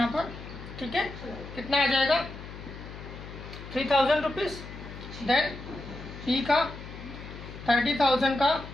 पर. ठीक है, कितना आ जाएगा? 3,000 रुपीज. देन पी का 30,000 का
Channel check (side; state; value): left; noise; hum, 12 dB below the sound